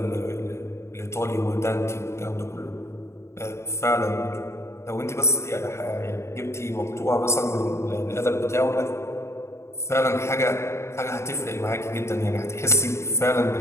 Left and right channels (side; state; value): right; late; 0.13 ms